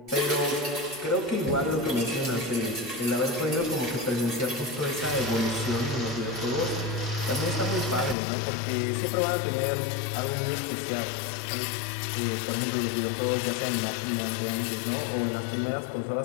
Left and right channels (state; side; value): drops out; right; at 8.2 s